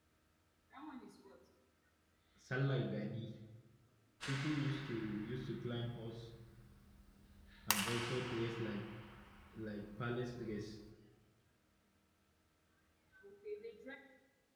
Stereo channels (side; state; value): both; identical; correlation 1.00